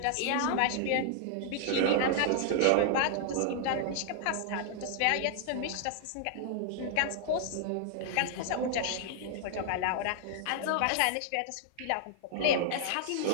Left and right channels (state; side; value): different; both; correlation -0.01